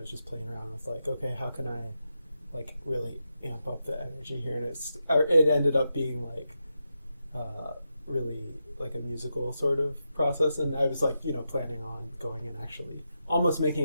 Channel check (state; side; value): inverted; both; correlation -0.87